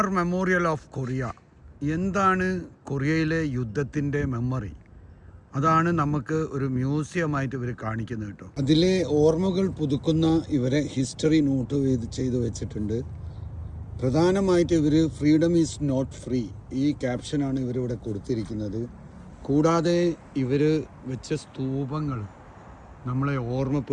memorial of Korea. എന്താണ് കൊറിയയിലെ യുദ്ധത്തിൻ്റെ മെമ്മറി? അതാണ് നമുക്ക് ഒരു മ്യൂസിയമായിട്ട് ഇവർ കാണിക്കുന്നത് കേട്ടോ. അതിലെ ഓർമ്മകൾ പുതുക്കുന്ന ഇവരെ ഹിസ്റ്ററി നോട്ട് ചെയ്ത് വെച്ചിട്ടുണ്ട്. പ്രധാനമായിട്ട് ഇവർ ഫ്രീഡം ഈസ് നോട്ട് ഫ്രീ, ഈ ക്യാപ്ഷനാണ് ഇവരിവിടെ കൊടുത്തിരിക്കുന്നത്. കൂടാതെ ഇവർ വെച്ച സ്തൂപങ്ങൾ നമ്മളെ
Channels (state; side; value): identical; both; correlation 1.00